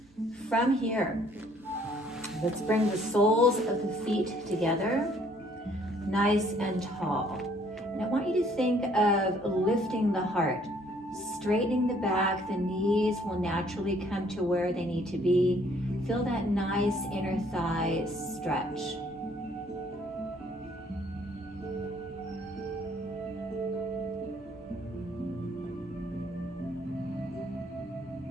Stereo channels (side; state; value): both; normal; correlation 0.62